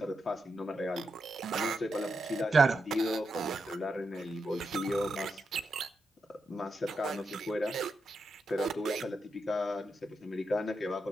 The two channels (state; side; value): normal; both; correlation 0.85